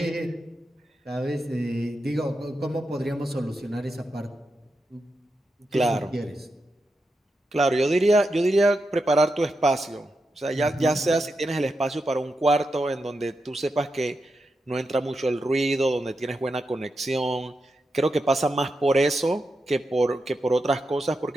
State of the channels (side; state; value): both; normal; correlation 0.87